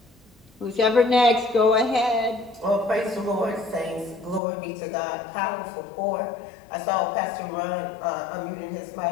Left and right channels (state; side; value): drops out; right; at 4.4 s